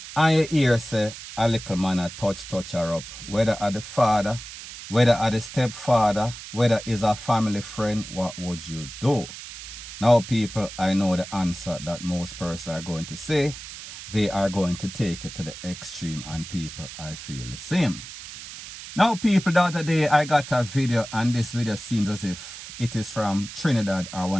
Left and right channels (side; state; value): right; noise; hiss, 12 dB below the sound